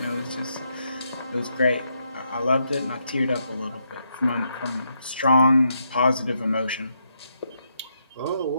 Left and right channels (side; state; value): both; inverted; correlation -0.79